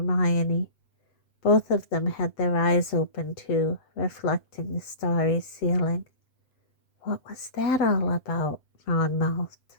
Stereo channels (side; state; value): right; late; 7.8 ms